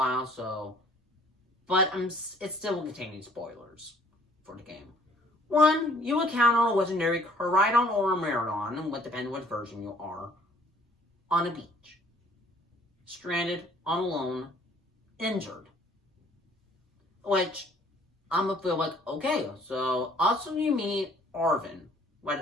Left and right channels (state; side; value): normal; both; correlation 0.58